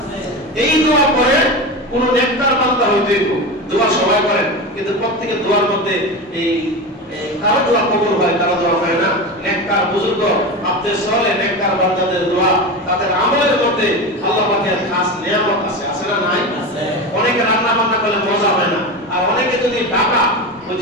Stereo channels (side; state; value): both; normal; correlation 0.23